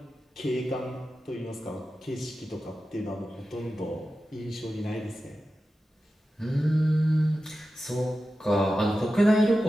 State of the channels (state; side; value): normal; both; correlation 0.92